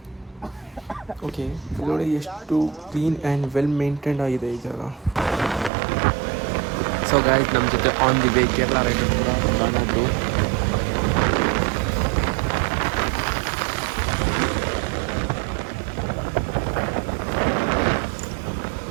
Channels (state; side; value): drops out; left; at 5.7 s